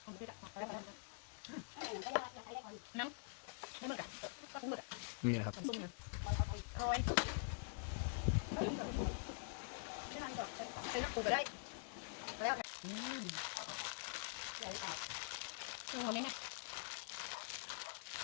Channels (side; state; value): right; silent; digital silence